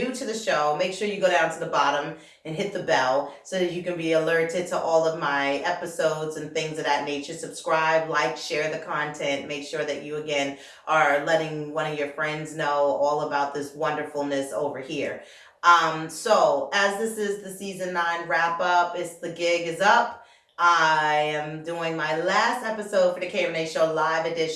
to the show, make sure you go down to the bottom and hit the bell so that you can be alerted to all of my episodes and things of that nature. Subscribe, like, share the content. Make sure that you, again, are letting one of your friends know all about this wonderfulness over here. So as this is the season 9 wrap up, the gig is up. I am doing my last episode for the KReneShow live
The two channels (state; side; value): identical; both; correlation 1.00